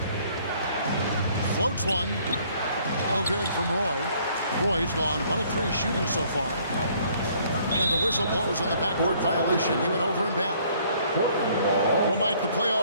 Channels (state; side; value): inverted; both; correlation -0.61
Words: Floats one. No good from Roy. Roy's gone 1 of 3 shooting so far. And the whistle blows on the backcourt violation. He went over and back. Well, Mike, the